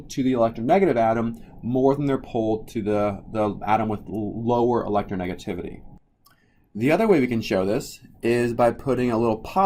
to the electronegative atom more than they're pulled to the atom with lower electronegativity. The other way we can show this is by putting a little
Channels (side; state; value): both; identical; correlation 1.00